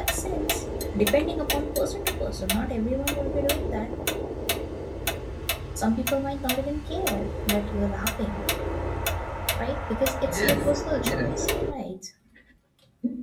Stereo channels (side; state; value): both; identical; correlation 1.00